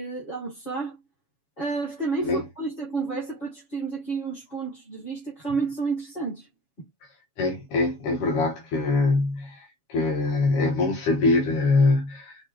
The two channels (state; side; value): late; right; 7.2 ms